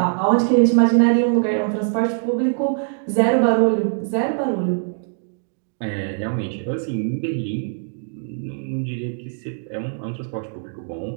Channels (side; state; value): left; silent; digital silence